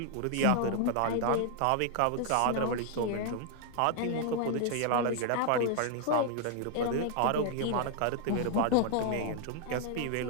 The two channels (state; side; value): different; both; correlation 0.00